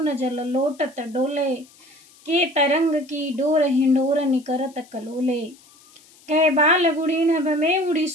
जल लोटत डोले, के तरंग की डोर हिंडोर निकरत कलोले, कै बाल गुड़ी नभ में उड़ी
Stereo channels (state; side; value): noise; left; hiss, 27 dB below the sound